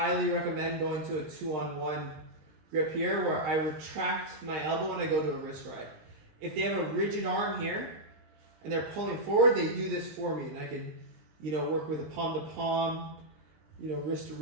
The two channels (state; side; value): late; left; 20 ms